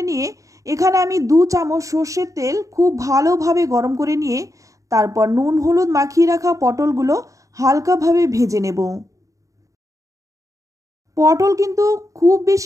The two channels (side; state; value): left; late; 0.16 ms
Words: নিয়ে এখানে আমি 2 চামচ সর্ষের তেল খুব ভালোভাবে গরম করে নিয়ে তারপর নুন হলুদ মাখিয়ে রাখা পটলগুলো হালকাভাবে ভেজে নেব। পটল কিন্তু খুব